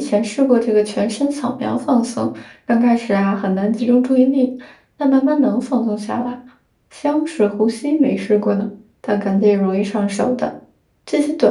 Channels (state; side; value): identical; both; correlation 1.00